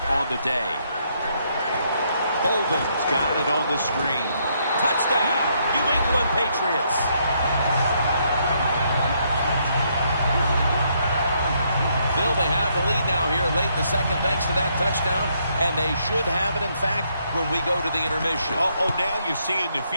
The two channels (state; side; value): inverted; both; correlation -0.73